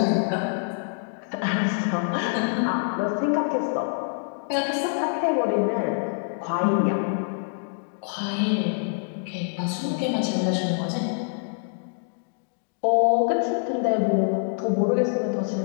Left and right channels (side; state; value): right; silent; digital silence